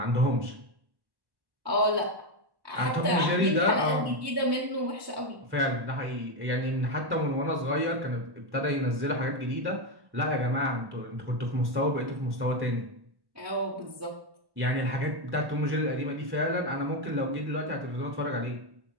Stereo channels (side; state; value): left; late; 1.1 ms